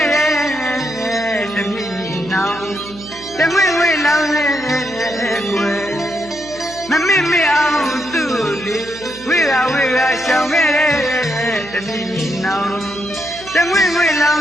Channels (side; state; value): right; noise; hum, 18 dB below the sound